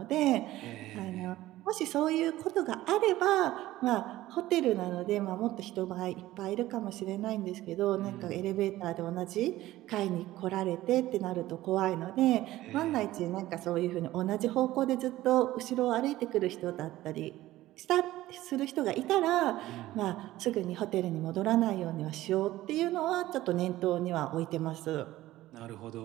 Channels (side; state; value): left; quieter; 15.8 dB